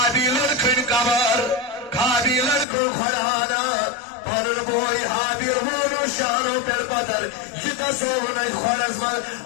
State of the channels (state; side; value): drops out; right; at 2.7 s